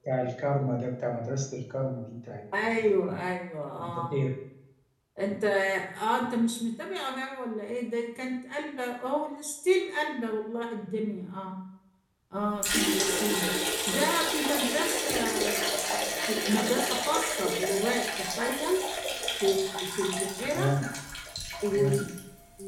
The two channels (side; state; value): both; identical; correlation 1.00